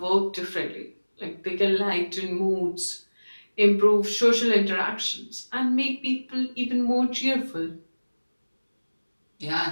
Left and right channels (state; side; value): inverted; both; correlation -1.00